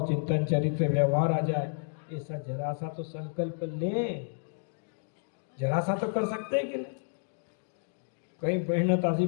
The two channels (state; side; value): silent; right; digital silence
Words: चिंतन चरित्र व्यवहार आ जाए। ऐसा जरा सा तो संकल्प ले, जरा सा तो कर सकते हैं कि नहीं। कई बहन तासी